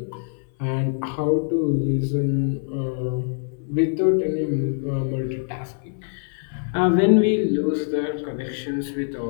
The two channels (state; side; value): silent; right; 58 dB below the other